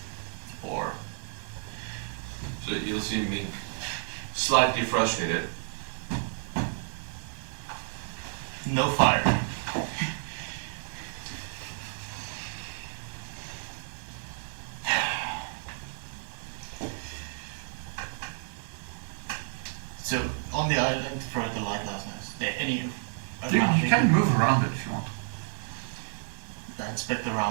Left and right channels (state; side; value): silent; left; 57 dB below the other